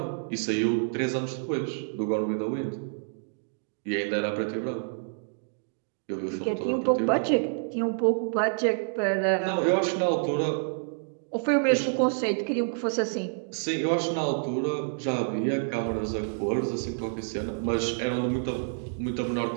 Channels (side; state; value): left; silent; digital silence